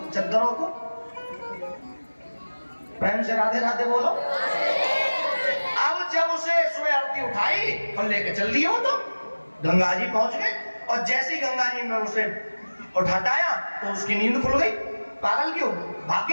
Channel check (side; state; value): both; inverted; correlation -1.00